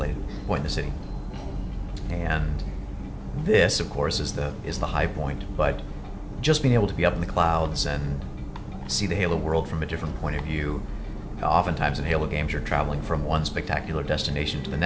in the city. And this, of course, is the high point. But just being able to be up in the clouds and see the Halo world from a different point of view. Oftentimes in Halo games, you're traveling from one spectacular destination to the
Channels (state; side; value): identical; both; correlation 1.00